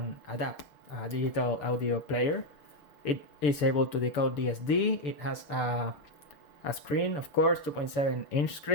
DAP, a digital audio player. It is able to decode DSD. It has a screen, of course, 2.7-inch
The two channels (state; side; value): late; right; 6.9 ms